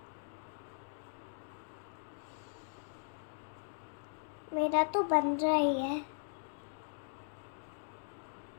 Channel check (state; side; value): silent; right; digital silence